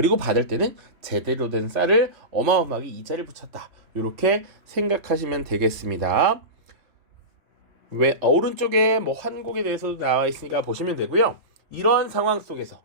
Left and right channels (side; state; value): left; late; 3.2 ms